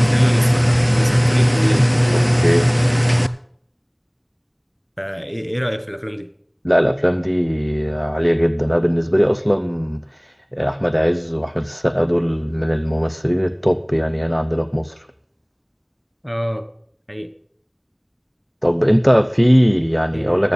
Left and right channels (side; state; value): both; identical; correlation 1.00